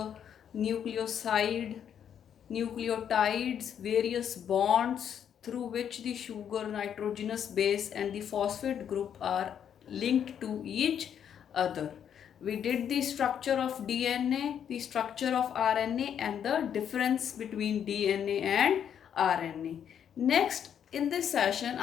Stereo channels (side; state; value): right; quieter; 8.8 dB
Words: nucleoside, nucleotides, various bonds through which the sugar, nitrogenous base and the phosphate group are linked to each other. We did the structure of DNA, the structure of RNA and the difference between DNA and RNA. Next, in this session,